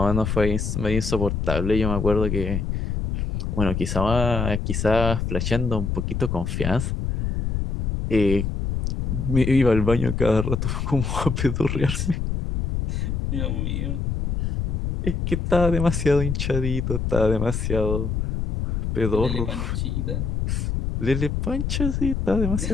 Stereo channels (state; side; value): noise; left; rumble, 1 dB below the sound